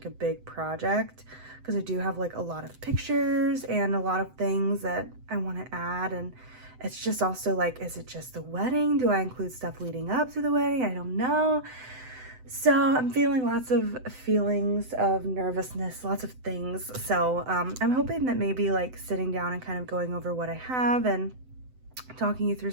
big project, because I do have a lot of pictures and a lot of things that I want to add. And it's just also is it just the wedding? Do I include stuff leading up to the wedding? I don't know. So I'm feeling lots of feelings of nervousness, lots of things. So I'm hoping that maybe sitting down and kind of going over what I have and talking you through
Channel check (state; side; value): late; left; 7.9 ms